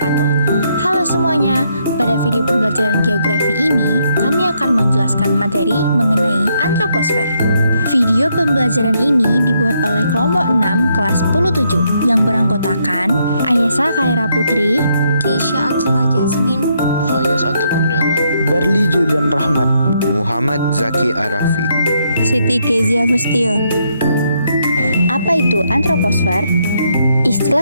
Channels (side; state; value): both; inverted; correlation -0.75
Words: Halo semuanya, pada video pembelajaran geografi ini kami akan menjelaskan materi mengenai antroposfer. Video pembelajaran ini dibuat oleh kelompok 6 kelas 10-7 yang beranggotakan Ayesa Khaira Putri, Keisha Atila Jasmine, Fayaz Atau Kurniawan, Berli Julian Rahmat, Muhammad Zaki Arafi, Siti Kezia Fustio. Apa itu antroposfer?